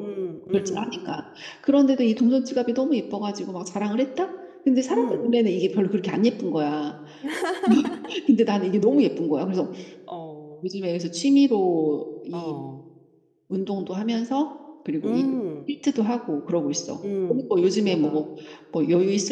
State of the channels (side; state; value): both; identical; correlation 1.00